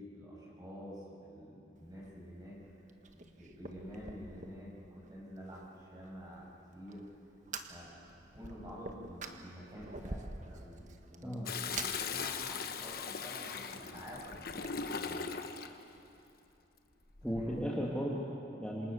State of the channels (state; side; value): normal; both; correlation 0.47